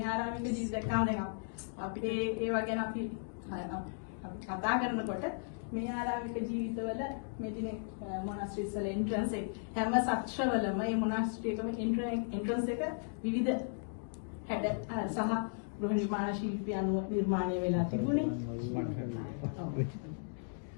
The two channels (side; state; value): right; silent; digital silence